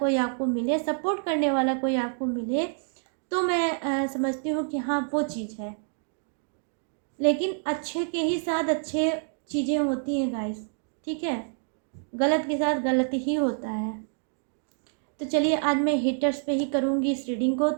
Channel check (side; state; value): left; silent; 60 dB below the other